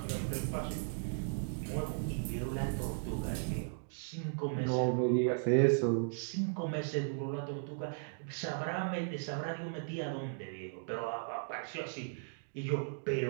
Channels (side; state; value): left; silent; digital silence